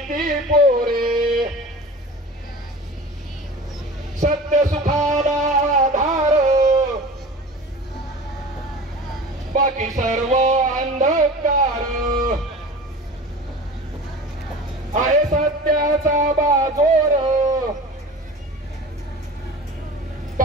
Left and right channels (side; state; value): both; normal; correlation 0.37